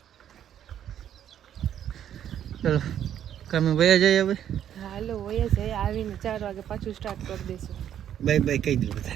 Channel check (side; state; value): left; quieter; 10.1 dB